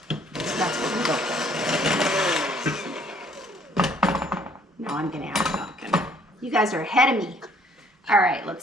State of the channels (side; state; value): both; normal; correlation 0.61